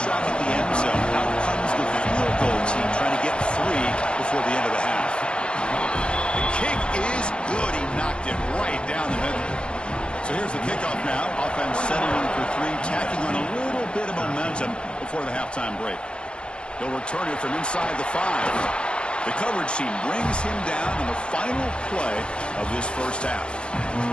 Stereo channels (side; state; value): right; late; 0.055 ms